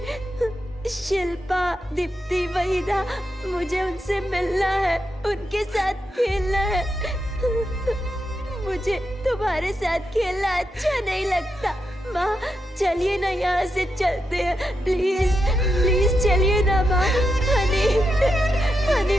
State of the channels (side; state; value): both; normal; correlation 0.85